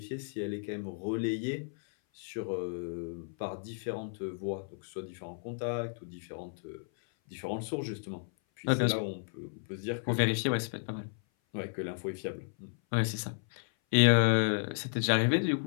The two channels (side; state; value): right; silent; 56 dB below the other